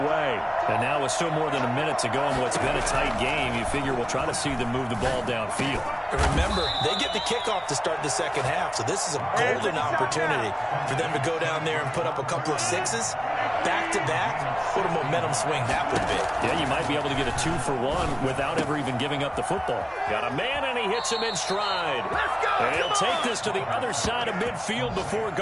And now with still more than a minute to go in what's been a tight game, you figure we'll try to see them move the ball downfield. And remember, they get the kickoff to start the second half, so this is a golden opportunity for them to go down there and put up a couple of 6s. Back-to-back, what a momentum swing that would be. Yeah, you might be able to get a 2-for-1 without ever even giving up the football. Got a man, and he hits him in stride. And he'll take this to the other side of midfield before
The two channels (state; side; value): identical; both; correlation 1.00